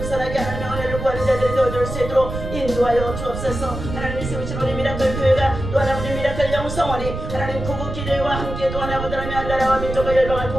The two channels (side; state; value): right; noise; rumble, 6 dB below the sound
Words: 하나님의 은혜를 구하는 자들이 되어줄 수 있도록 인도하여 주옵소서. 하나님이 세우신 우리 미라클 교회가 또한 아버지 미라클 영성원이 하나님 구국 기도와 함께 또한 아버지 하나님의 나라와 민족과 열방을